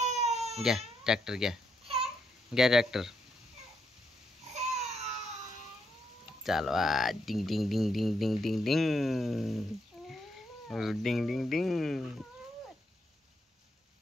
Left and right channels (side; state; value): both; normal; correlation 0.79